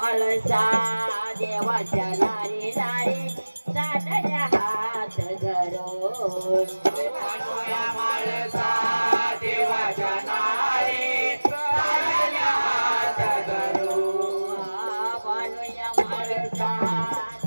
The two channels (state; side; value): inverted; both; correlation -1.00